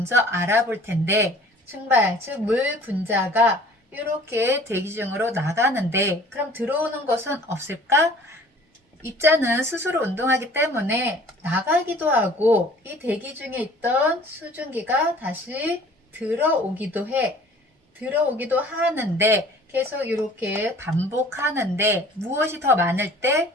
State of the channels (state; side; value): normal; both; correlation 0.50